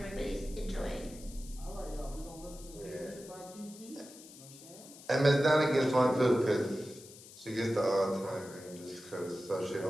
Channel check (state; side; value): noise; left; hiss, 18 dB below the sound